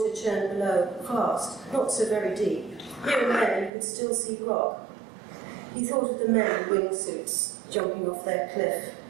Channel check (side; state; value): left; drops out; at 3.7 s